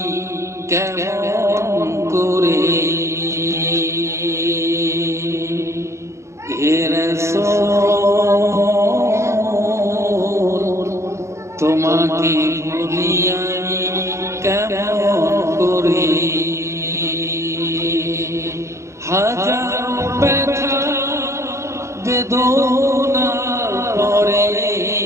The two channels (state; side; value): late; left; 0.14 ms